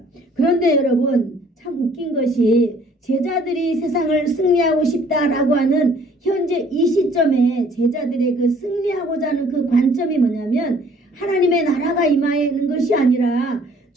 그런데 여러분 참 웃긴 것이 제자들이 세상을 승리하고 싶다라고 하는 현재 이 시점에 제자들의 그 승리하고자 하는 그 관점이 뭐냐면 하나님의 나라가 임하는 것이 아니라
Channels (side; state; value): both; normal; correlation 0.58